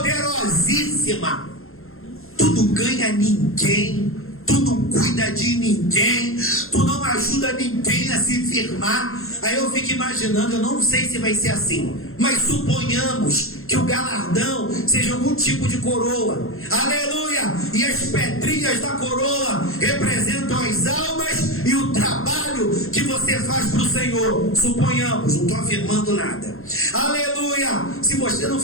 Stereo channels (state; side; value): late; right; 0.61 ms